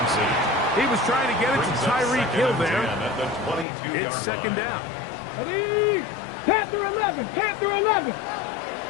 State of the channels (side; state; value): right; drops out; at 3.7 s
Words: He was trying to get it to Tyreek Hill there. It's second down. Ready? Panther 11, Panther 11.